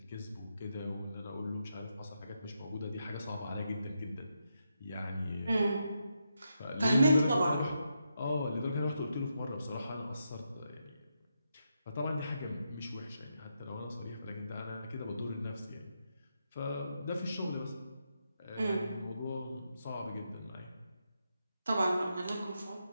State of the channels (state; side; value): inverted; both; correlation -0.83